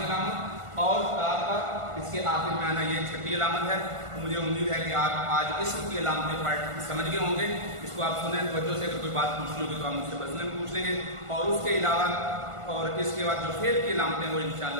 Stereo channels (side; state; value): left; late; 1.5 ms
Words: علامت اور تا کا اس کے آخر میں آنا یہ چھٹی علامت ہے. مجھے امید ہے کہ آپ آج اسم کی علامتیں پڑھ سمجھ گئے ہوں گے. اس کو آپ سنیں توجہ سے. اگر کوئی بات پوچھنی ہوگی تو آپ مجھ سے بسنے میں پوچھ لیں گے. اور اس کے علاوہ اور اس کے بعد جو فعل کی علامتیں وہ